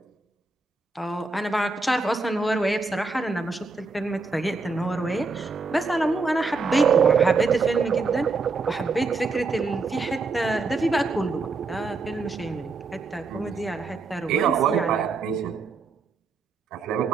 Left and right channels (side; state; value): left; quieter; 4.0 dB